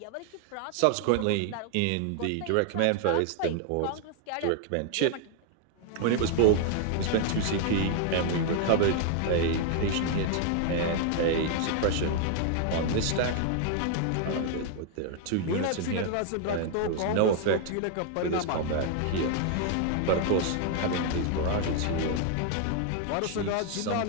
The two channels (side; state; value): both; different; correlation 0.00